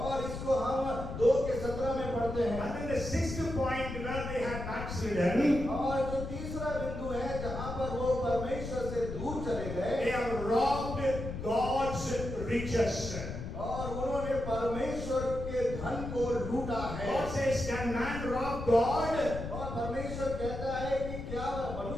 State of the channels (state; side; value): noise; left; rumble, 7 dB below the sound